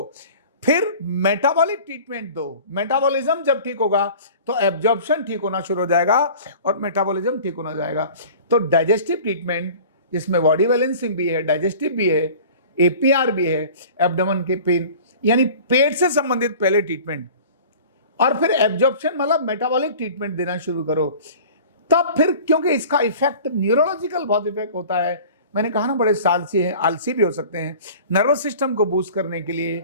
फिर मेटाबॉलिक ट्रीटमेंट दो। मेटाबॉलिज्म जब ठीक होगा तो एब्जॉर्प्शन ठीक होना शुरू हो जाएगा और मेटाबॉलिज्म ठीक होना जाएगा। तो डाइजेस्टिव ट्रीटमेंट जिसमें बॉडी बैलेंसिंग भी है, डाइजेस्टिव भी है, एपीआर भी है, एब्डोमेन के पेन यानी पेट से संबंधित पहले ट्रीटमेंट, और फिर एब्जॉर्प्शन मतलब मेटाबॉलिक ट्रीटमेंट देना शुरू करो। तब फिर क्योंकि इसका इफेक्ट न्यूरोलॉजिकल बहुत इफेक्ट होता है, मैंने कहा ना बड़े सालसी हैं, आलसी भी हो सकते हैं। नर्वस सिस्टम को बूस्ट करने के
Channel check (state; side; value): inverted; both; correlation -0.43